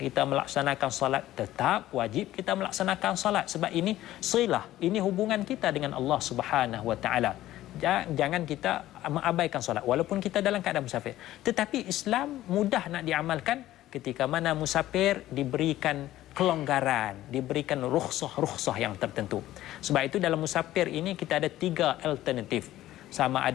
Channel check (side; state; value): right; quieter; 14.5 dB